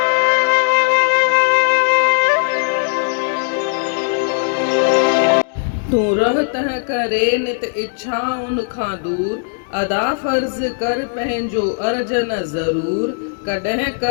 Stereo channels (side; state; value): right; silent; digital silence